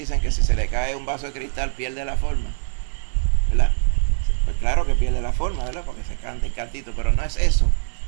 que si se le cae un vaso de cristal pierde la forma, ¿verdad? Pues claro que pierde la forma, ¿verdad? Porque se canta el cantito, pero no es eso.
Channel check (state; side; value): silent; left; digital silence